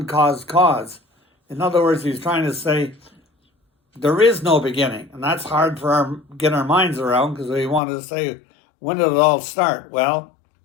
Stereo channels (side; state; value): right; drops out; at 7.8 s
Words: cause. In other words, he's trying to say there is no beginning, and that's hard for get our minds around, because we want to say, when did it all start? Well,